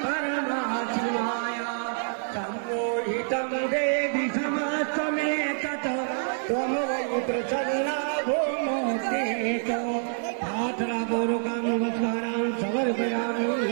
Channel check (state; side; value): silent; left; digital silence